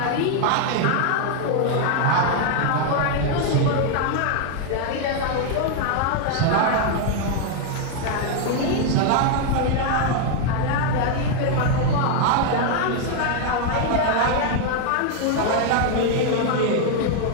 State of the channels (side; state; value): both; different; correlation 0.00